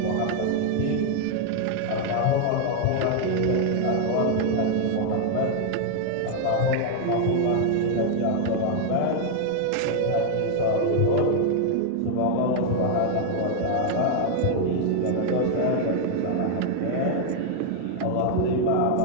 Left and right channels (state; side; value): different; both; correlation 0.00